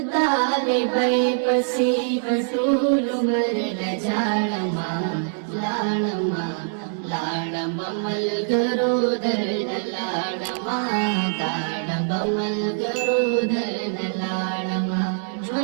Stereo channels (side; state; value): left; silent; 61 dB below the other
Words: طالبای پسې بټول عمر لجاړما لاړما لاړما ملګرو درنه لاړما داړما ملګرو درنه لاړما